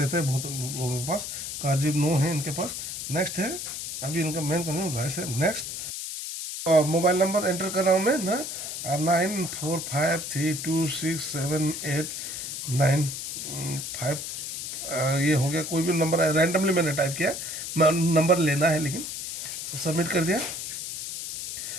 हैं बहुत लोगों के पास। कारजीब नो है इनके पास। नेक्स्ट है, अभी इनका मेन कंज्यूम राइस है। नेक्स्ट, मोबाइल नंबर एंटर कर रहा हूँ मैं ना, 9453267895। ये हो गया, कोई भी नंबर रैंडमली मैंने टाइप किया, नंबर लेना है लेकिन। सबमिट कर दिया,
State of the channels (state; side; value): noise; left; hiss, 6 dB below the sound